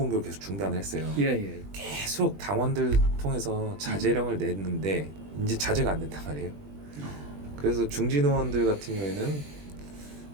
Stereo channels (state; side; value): late; left; 20 ms